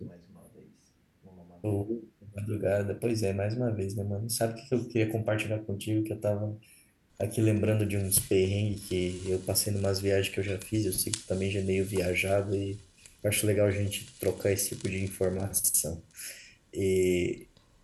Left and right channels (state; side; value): identical; both; correlation 1.00